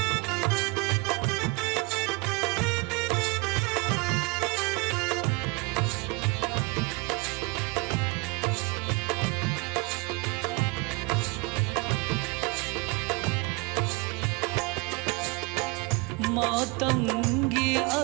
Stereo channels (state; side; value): quieter; left; 26.8 dB